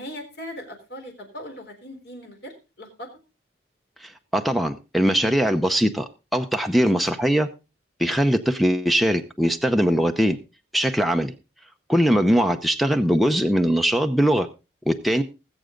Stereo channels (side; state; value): both; normal; correlation 0.91